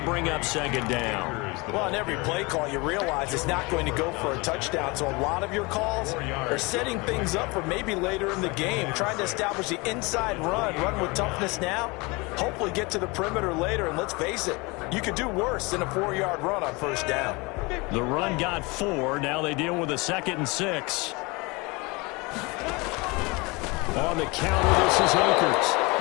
up 2nd down. Well, on every play call, you realize it's not going to go for a touchdown. So a lot of your calls are setting things up for maybe later in the game, trying to establish the inside run with toughness now, hopefully get to the perimeter later. And let's face it, you could do worse than a 4-yard run on 1st down. The run got 4. Now they deal with a 2nd and 6. On the counter, this is Akers.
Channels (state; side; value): quieter; right; 26.1 dB